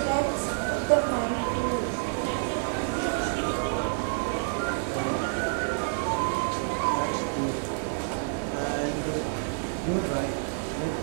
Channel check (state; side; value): silent; left; 59 dB below the other